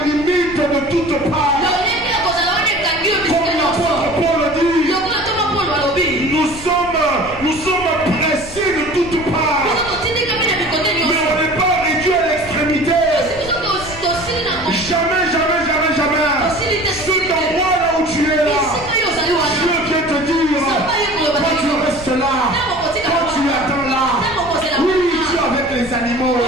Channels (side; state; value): left; noise; rumble, 15 dB below the sound